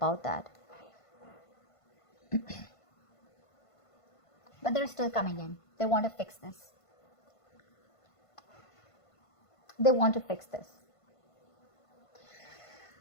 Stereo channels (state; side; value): late; right; 1.5 ms